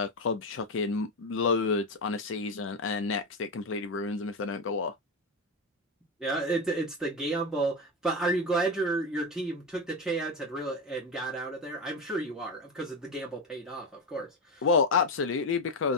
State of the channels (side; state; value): both; normal; correlation 0.15